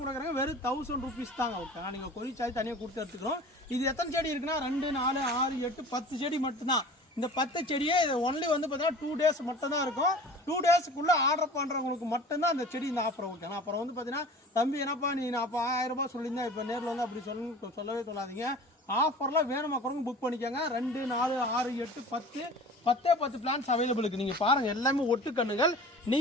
கொடுக்குறாங்க வெறும் 1000 ரூபீஸ் தாங்க. ஓகேனா நீங்க கொரி சார்ஜ் தனியாக கொடுத்து எடுத்துக்கிறோம். இது எத்தனை செடி இருக்குன்னா 2, 4, 6, 8, 10 செடி மட்டும்தான். இந்த 10 செடியே இது ஒன்லி வந்து பார்த்தீங்கன்னா 2 days மட்டும் தான் இருக்கும். 2 daysக்குள்ள ஆர்டர் பண்ணுறவங்களுக்கு மட்டும்தான் அந்த செடி இந்த ஆஃபர். ஓகேனா அப்புறம் வந்து பார்த்தீங்கன்னா தம்பி என்னப்பா நீ நான் அப்போ 1000 ரூபாய் சொல்லியிருந்தேன் இப்போ நேரில் வந்து அப்படி சொல்லவே சொல்லாதீங்க. ஆஃபரில் வேணுமா குறைங்க புக் பண்ணிக்கோங்க. 2, 4, 6, 8, 10 பிளான்ஸ் அவைலபிள் இருக்குது. நீங்கள் பாருங்கள் எல்லாமே ஒட்டுக்கண்ணுகள்.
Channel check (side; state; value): both; normal; correlation 0.41